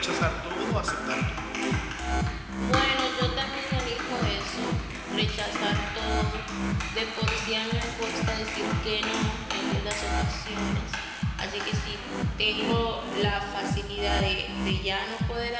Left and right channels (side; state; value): both; identical; correlation 1.00